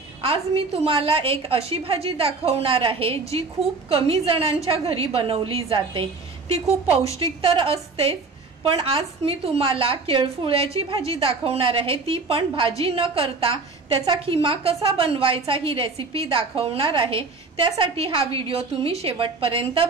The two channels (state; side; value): quieter; left; 4.1 dB